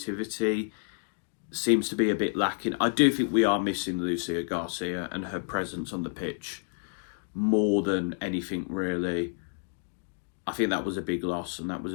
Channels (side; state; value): right; silent; digital silence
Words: seems to be a bit lacking. I do think we are missing Lucia Garcia and her presence on the pitch more than anything, really. I think that was a big loss and that was